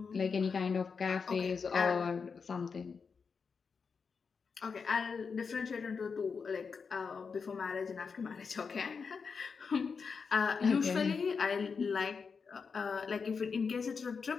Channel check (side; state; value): right; quieter; 5.5 dB